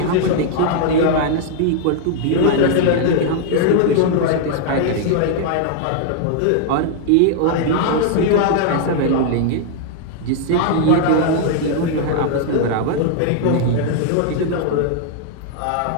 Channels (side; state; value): both; different; correlation 0.00